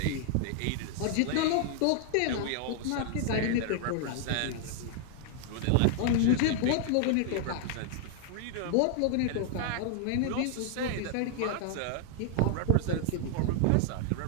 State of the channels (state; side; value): different; both; correlation 0.00